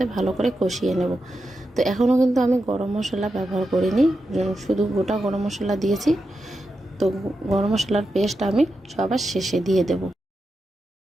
ভালো করে কষিয়ে নেব। তো এখনও কিন্তু আমি গরম মশলা ব্যবহার করিনি, শুধু গোটা গরম মশলা দিয়েছি। তো গরম মশলার পেস্ট আমি সবার শেষে দিয়ে দেব।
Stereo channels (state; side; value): normal; both; correlation 0.88